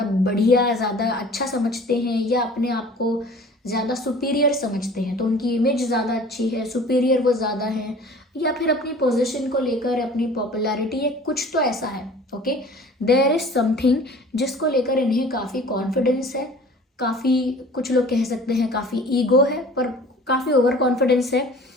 बढ़िया, ज़्यादा अच्छा समझते हैं, या अपने आप को ज़्यादा सुपीरियर समझते हैं, तो उनकी इमेज ज़्यादा अच्छी है, सुपीरियर वो ज़्यादा है, या फिर अपनी पोजीशन को लेकर, अपनी पॉपुलैरिटी है, कुछ तो ऐसा है। ओके देयर इज समथिंग जिसको लेकर इन्हें काफ़ी कॉन्फिडेंस है, काफ़ी, कुछ लोग कह सकते हैं काफ़ी ईगो है, पर काफ़ी ओवर कॉन्फिडेंस है,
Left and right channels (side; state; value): both; normal; correlation 0.46